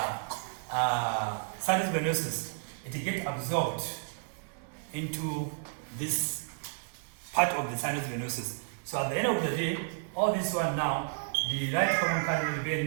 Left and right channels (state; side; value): silent; left; digital silence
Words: sinus venosus, it gets absorbed into this part of the sinus venosus. So at the end of the day, all this one now, the right common cardinal